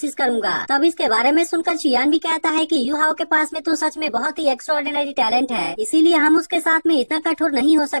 करूंगा। तब इसके बारे में सुनकर चियान भी कहता है कि यू हाओ के पास में तो सच में बहुत ही एक्स्ट्राऑर्डिनरी टैलेंट है, इसीलिए हम उसके साथ में इतना कठोर नहीं हो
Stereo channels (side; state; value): both; inverted; correlation -1.00